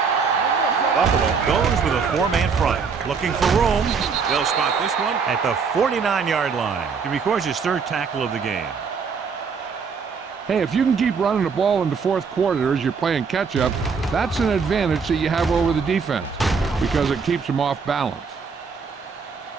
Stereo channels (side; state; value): left; quieter; 5.6 dB